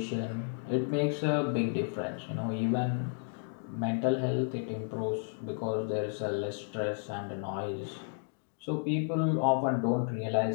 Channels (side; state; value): right; silent; digital silence